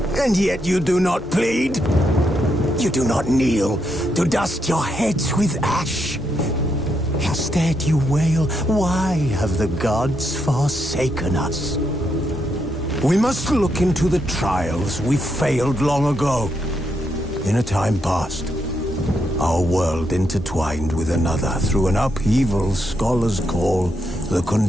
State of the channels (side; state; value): both; normal; correlation 0.80